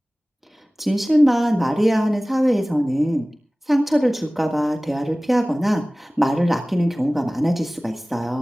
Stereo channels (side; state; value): both; normal; correlation 0.98